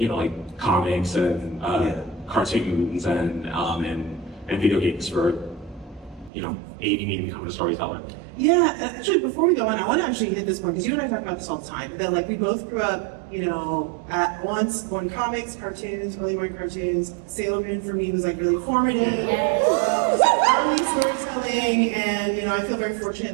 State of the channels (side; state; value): left; drops out; at 6.3 s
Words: comics and cartoons and video games for, aiding me in becoming a storyteller. Yeah, actually, before we go on, I want to actually hit this point, because you and I talk about this all the time, that like we both grew up, at once on comics, cartoons, early morning cartoons. Sailor Moon for me was like really formative. Early storytelling, and I feel very